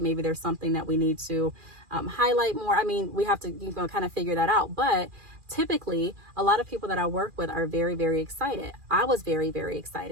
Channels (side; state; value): left; late; 2.4 ms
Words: Maybe there's something that we need to highlight more. I mean, we have to kind of figure that out. But typically, a lot of people that I work with are very, very excited. I was very, very